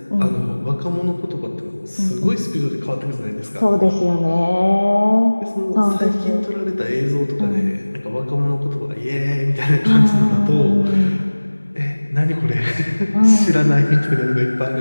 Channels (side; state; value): both; inverted; correlation -1.00